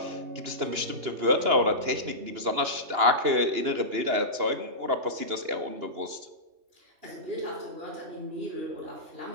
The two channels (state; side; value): late; left; 2.9 ms